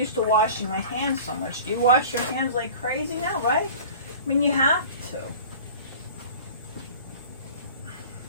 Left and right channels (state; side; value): inverted; both; correlation -0.41